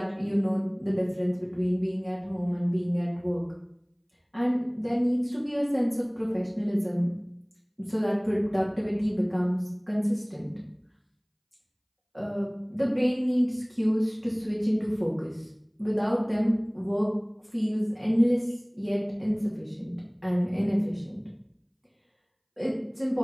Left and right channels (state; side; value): identical; both; correlation 1.00